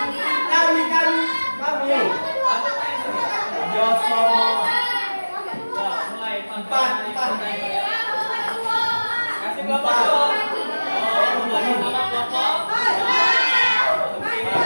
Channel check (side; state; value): both; inverted; correlation -1.00